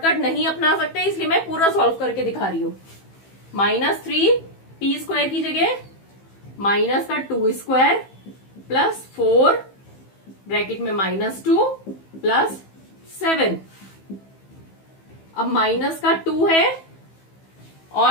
नहीं अपना सकते, इसलिए मैं पूरा सॉल्व करके दिखा रही हूँ। -3p² की जगह माइनस का 2² प्लस 4 ब्रैकेट में -2 प्लस 7। अब माइनस का 2 है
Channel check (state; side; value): late; right; 15 ms